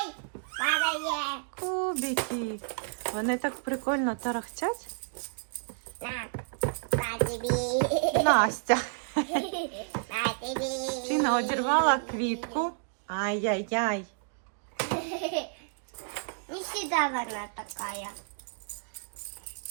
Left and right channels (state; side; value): silent; left; digital silence